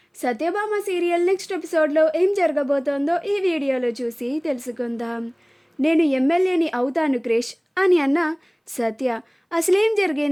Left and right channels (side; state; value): both; identical; correlation 1.00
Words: Satyabhama serial next ఎపిసోడ్లో ఏం జరగబోతోందో ఈ వీడియోలో చూసి తెలుసుకుందాం. నేను ఎమ్మెల్యేని అవుతాను క్రిష్ అని అన్న సత్య అసలేం